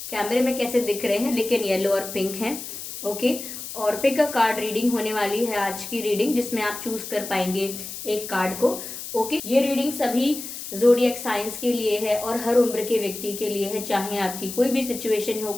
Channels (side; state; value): left; noise; hiss, 9 dB below the sound